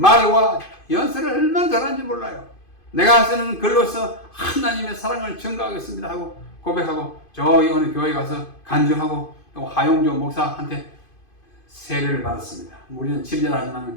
말과 연설을 얼마나 잘하는지 몰라요. 내가 쓰는 글로서 하나님의 사랑을 증거하겠습니다 하고 고백하고 저기 어느 교회 가서 간증하고 또 하용조 목사한테 세례를 받았습니다. 우리는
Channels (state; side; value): late; right; 2.5 ms